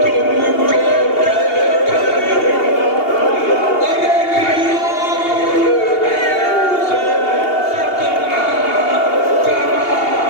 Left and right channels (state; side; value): late; right; 2.8 ms